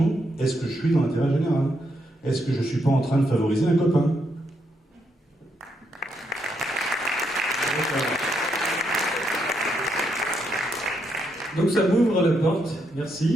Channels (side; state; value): both; normal; correlation 0.79